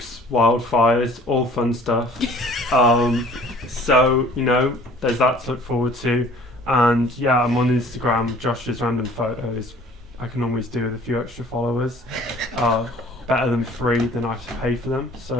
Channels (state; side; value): normal; both; correlation 0.52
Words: wildfires, all fun stuff. So, you know, there's that to look forward to. And yeah, I'm on Instagram, Josh's Random Photos. I can always do with a few extra followers. Better than free than I have to pay for them.